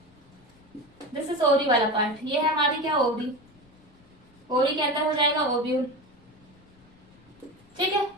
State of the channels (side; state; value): left; noise; rumble, 29 dB below the sound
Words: This is ovary वाला पार्ट। ये है हमारी क्या, ओवरी। ओवरी के अंदर हो जाएगा ओव्यूल, ठीक है।